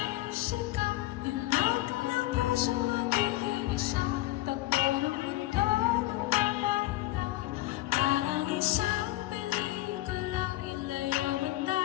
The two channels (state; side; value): quieter; right; 17.5 dB